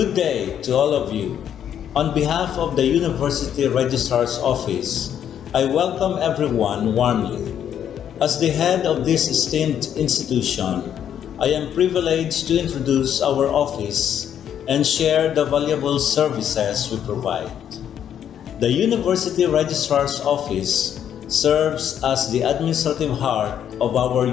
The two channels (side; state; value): right; quieter; 9.5 dB